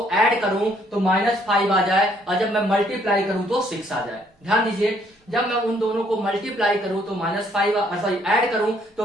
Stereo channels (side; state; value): both; normal; correlation 0.66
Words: ऐड करूं तो -5 आ जाए और जब मैं मल्टीप्लाई करूं तो 6 आ जाए। ध्यान दीजिए, जब मैं उन दोनों को मल्टीप्लाई करूं तो ऐड करूं तो